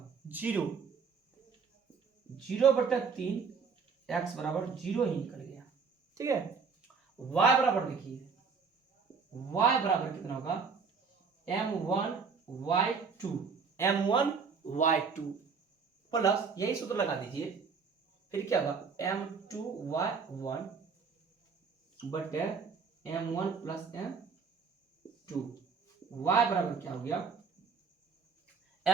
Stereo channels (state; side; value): quieter; left; 5.5 dB